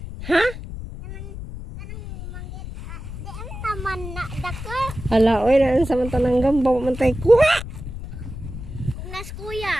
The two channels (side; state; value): left; noise; rumble, 10 dB below the sound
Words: Ha? Kanang mangit. Di ang naman na dako. Hala, oy, naan sa mantanang gamba, mantay kuha. Kung nas